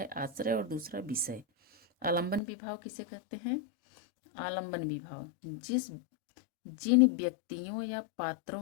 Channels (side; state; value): right; drops out; at 2.4 s